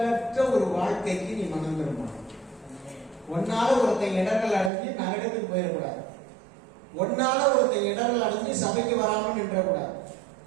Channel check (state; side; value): drops out; left; at 4.7 s